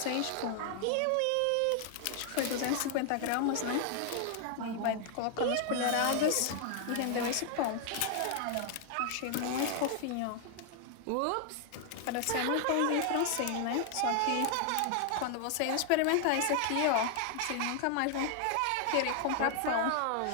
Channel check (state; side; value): different; both; correlation 0.00